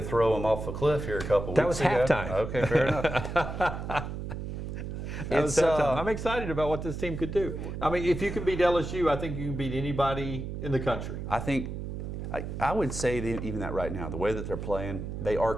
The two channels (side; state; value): right; noise; hum, 6 dB below the sound